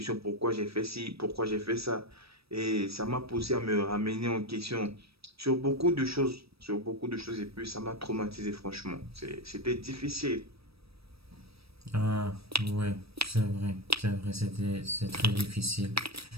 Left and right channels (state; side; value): late; left; 0.77 ms